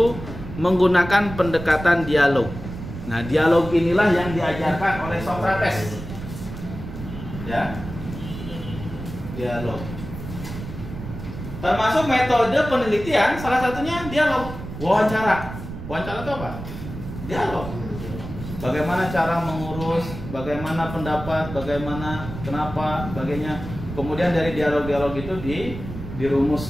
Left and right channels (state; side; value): noise; right; rumble, 10 dB below the sound